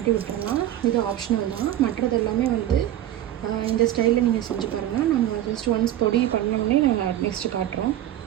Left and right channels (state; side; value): quieter; left; 12.6 dB